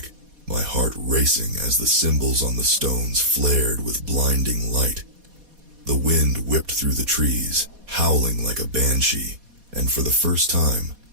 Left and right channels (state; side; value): late; left; 4.2 ms